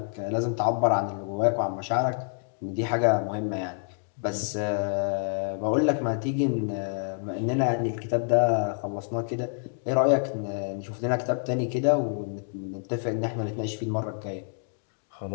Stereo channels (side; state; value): right; silent; digital silence